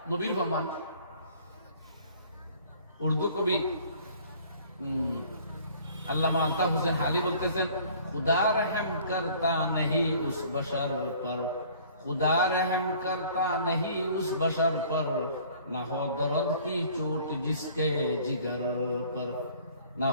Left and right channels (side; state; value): both; inverted; correlation -0.53